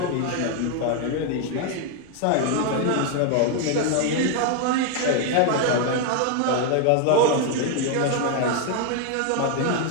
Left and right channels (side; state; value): both; different; correlation 0.00